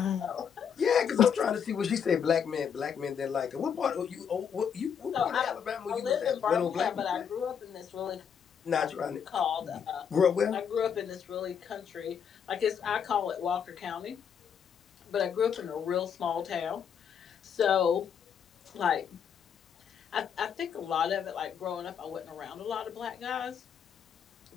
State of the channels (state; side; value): quieter; right; 7.6 dB